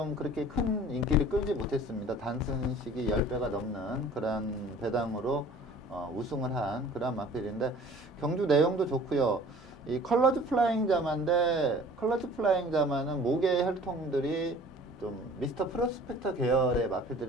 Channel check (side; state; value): both; normal; correlation 0.48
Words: 그렇게 큰 인기를 끌지 못했습니다. 단순식이 10배가 넘는 그런 배당으로 우승을 한 그런 마필인데 경주 내용도 좋고요. 이 컬러즈 플라잉 자마인데 컬러즈 플라잉 자마는 목의 혈통들이 좀 미스터 프로스펙터 계열의